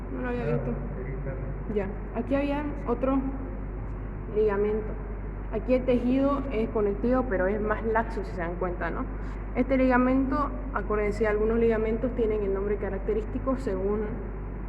no lo había visto. Ya, aquí había otro ligamento. Aquí el tejido es conectivo, pero es más laxo, si se dan cuenta, ¿no? Este ligamento, acuérdense, algunos ligamentos tienen el nombre característico según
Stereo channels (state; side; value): identical; both; correlation 1.00